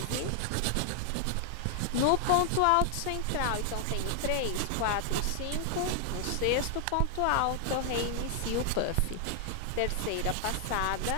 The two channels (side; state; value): both; different; correlation 0.00